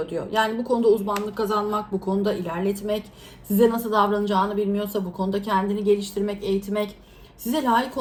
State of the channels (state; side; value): identical; both; correlation 1.00